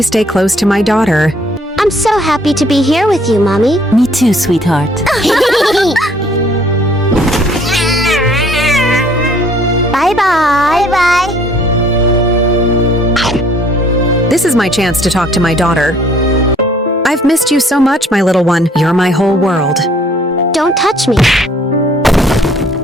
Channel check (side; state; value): both; normal; correlation 0.60